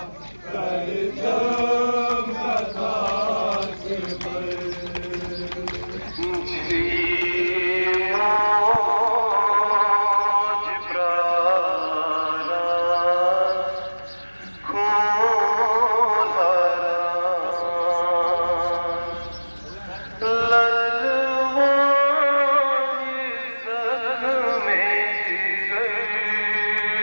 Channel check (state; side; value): inverted; both; correlation -1.00